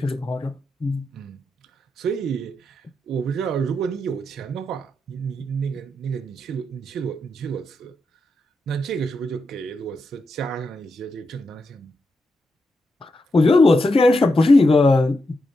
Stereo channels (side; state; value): both; normal; correlation 0.85